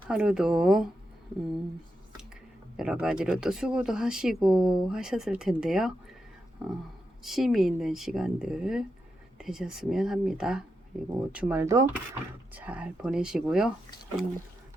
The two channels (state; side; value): normal; both; correlation 0.86